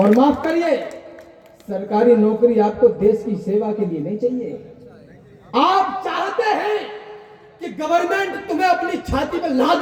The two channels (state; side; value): identical; both; correlation 1.00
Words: माफ करिए, सरकारी नौकरी आपको देश की सेवा के लिए नहीं चाहिए। आप चाहते हैं कि गवर्नमेंट तुम्हें अपनी छाती पर लाद